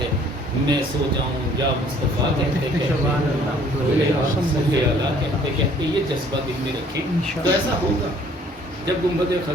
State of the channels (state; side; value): normal; both; correlation 0.57